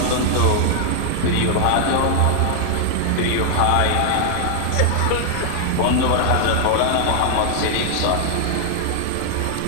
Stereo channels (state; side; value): different; both; correlation 0.00